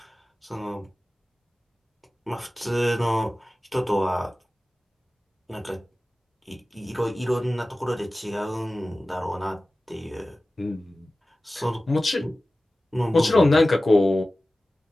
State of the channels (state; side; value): normal; both; correlation 0.96